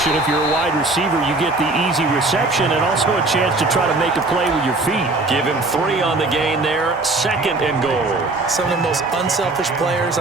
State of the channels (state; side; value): quieter; left; 3.1 dB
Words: If you're a wide receiver, you get the easy reception and also a chance to try to make a play with your feet. Give him 3 on the gain there. 2nd and goal. Some of the most unselfish players